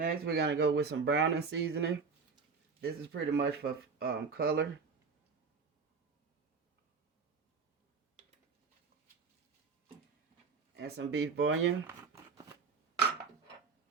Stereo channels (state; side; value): quieter; left; 5.1 dB